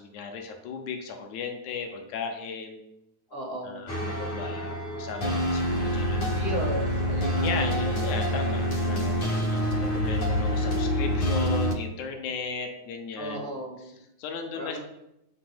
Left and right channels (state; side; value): late; right; 9.6 ms